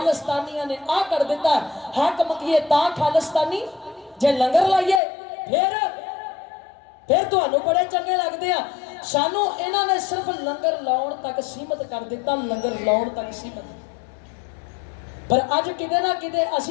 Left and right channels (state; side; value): drops out; right; at 5.0 s